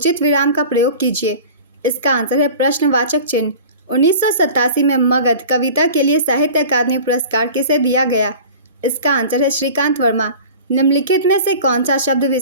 विराम का प्रयोग कीजिए। इसका आंसर है प्रश्नवाचक चिन्ह। 1987 में मगध कविता के लिए साहित्य अकादमी पुरस्कार किसे दिया गया? इसका आंसर है श्रीकांत वर्मा। निम्नलिखित में से कौन सा शब्द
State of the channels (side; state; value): both; inverted; correlation -0.39